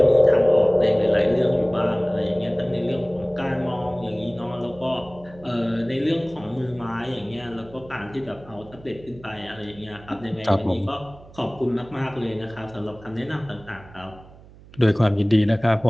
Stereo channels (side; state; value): right; noise; hum, 22 dB below the sound